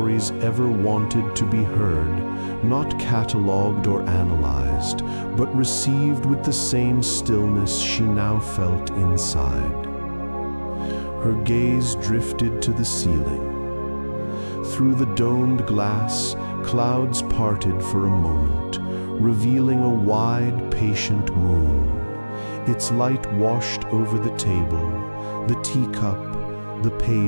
ever wanted to be heard, not catalogued or analyzed, but received with the same stillness she now felt inside. Her gaze drifted to the ceiling. Through the domed glass, clouds parted for a moment, revealing a wide, patient moon. Its light washed over the table, the teacup, the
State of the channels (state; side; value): inverted; both; correlation -1.00